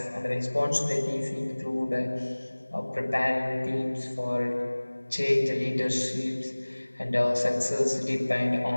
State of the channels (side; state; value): both; inverted; correlation -1.00